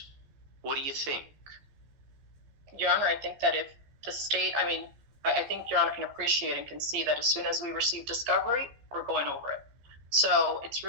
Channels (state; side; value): late; left; 14 ms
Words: What do you think? Your Honor, I think that if the state, I think Your Honor can appreciate and can see that as soon as we receive discovery, we're going over it. So it's